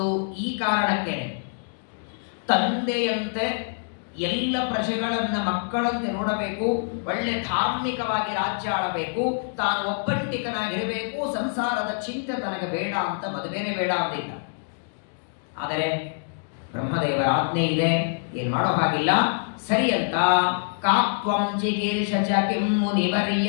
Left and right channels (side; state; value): right; silent; digital silence